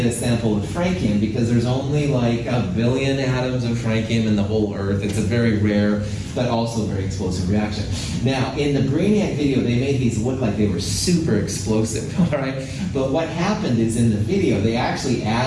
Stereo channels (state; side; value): identical; both; correlation 1.00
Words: a sample of francium because there's only like 1 billion atoms of francium in the whole Earth. It's a very rare, but also very explosive reaction. Now, in the Brainiac video, they made these look like they were super explosive, all right? But what happened is in the video, they actually